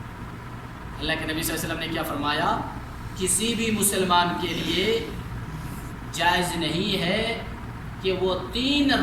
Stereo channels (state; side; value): identical; both; correlation 1.00